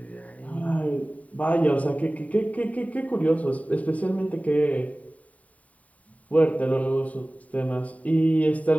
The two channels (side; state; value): right; late; 0.069 ms